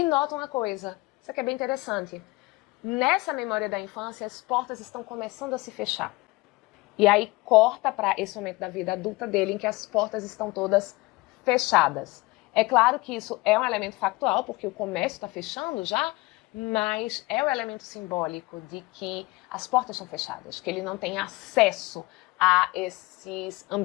nota uma coisa, isso aqui é bem interessante. Nessa memória da infância, as portas estão começando a se fechar. E aí corta para esse momento da vida adulta dele, em que as portas estão todas fechadas. É claro que isso é um elemento factual, porque o comércio está fechando já, mas é o elemento simbólico de que as portas estão fechadas, que ele não tem acesso a esses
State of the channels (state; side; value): quieter; right; 22.6 dB